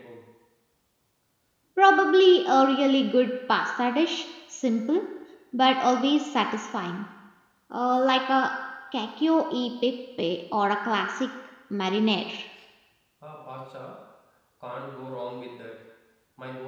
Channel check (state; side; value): identical; both; correlation 1.00